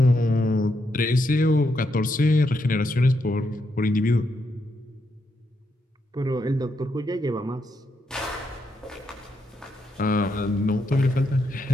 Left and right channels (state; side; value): normal; both; correlation 0.80